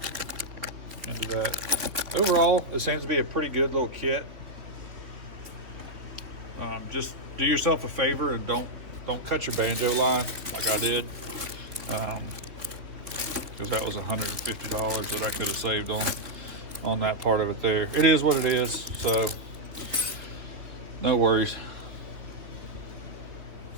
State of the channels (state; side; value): late; left; 3.3 ms